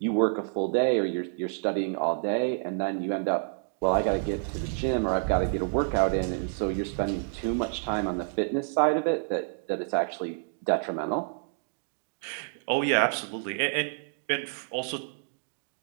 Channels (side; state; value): left; silent; digital silence